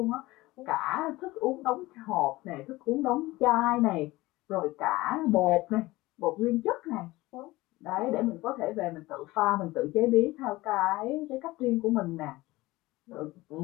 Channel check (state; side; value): quieter; right; 19.5 dB